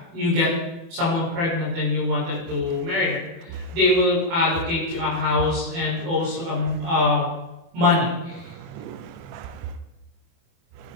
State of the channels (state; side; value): late; left; 24 ms